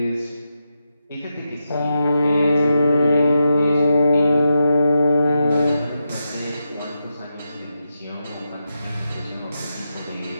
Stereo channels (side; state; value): both; inverted; correlation -0.87